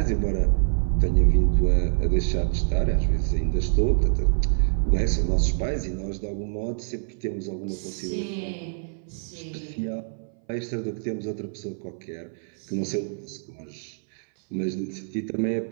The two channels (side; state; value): left; silent; 59 dB below the other